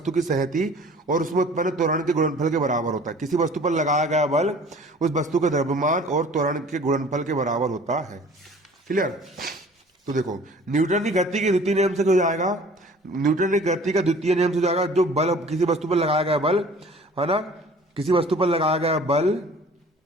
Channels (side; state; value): both; normal; correlation 0.48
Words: की सहती और उसमें उत्पन्न त्वरण के गुणनफल के बराबर होता है। किसी वस्तु पर लगाया गया बल उस वस्तु के द्रव्यमान और त्वरण के गुणनफल के बराबर होता है। क्लियर? तो देखो, न्यूटन की गति के द्वितीय नियम से हो जाएगा, न्यूटन की गति का द्वितीय नियम से जाएगा, जो बल किसी वस्तु पर लगाया गया बल, है ना, किसी वस्तु पर लगाया गया बल